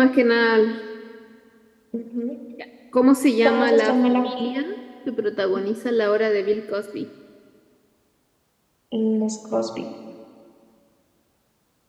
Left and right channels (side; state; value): both; identical; correlation 1.00